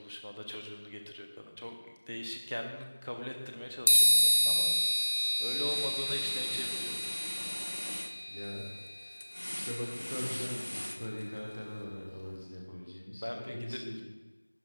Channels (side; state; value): both; inverted; correlation -1.00